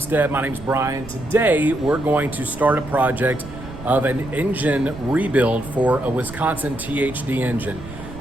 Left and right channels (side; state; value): right; noise; rumble, 14 dB below the sound